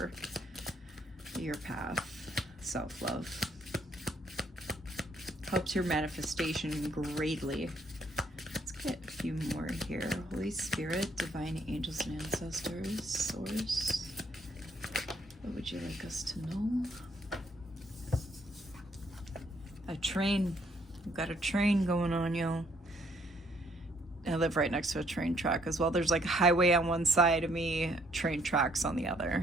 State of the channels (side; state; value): both; normal; correlation 0.68